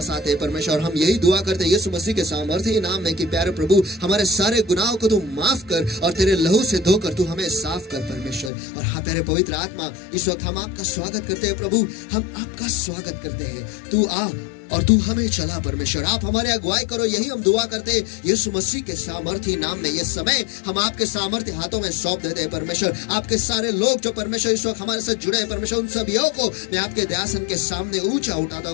आते हैं परमेश्वर। हम यही दुआ करते हैं यीशु मसीह के सामर्थ्य नाम में कि प्यारे प्रभु, हमारे सारे गुनाहों को तू माफ कर और तेरे लहू से धोकर तू हमें साफ कर परमेश्वर। और हाँ प्यारे पवित्र आत्मा, इस वक्त हम आपका स्वागत करते हैं प्रभु, हम आपका स्वागत करते हैं। तू आ और तू हमें चला परमेश्वर। आप हमारे अगुवाई करो, यही हम दुआ करते हैं यीशु मसीह के सामर्थ्य नाम में। ये समय हम आपके सामर्थ्य हाथों में सौंप देते हैं परमेश्वर। आपके सारे लोग जो परमेश्वर इस वक्त हमारे साथ जुड़े हैं परमेश्वर, उन सभी को मैं आपके दयासन के सामने ऊंचा उठाता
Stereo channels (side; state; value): right; drops out; at 8.5 s